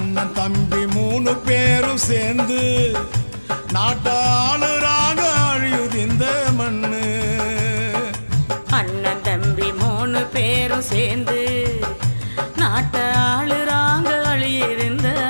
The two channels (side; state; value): both; inverted; correlation -1.00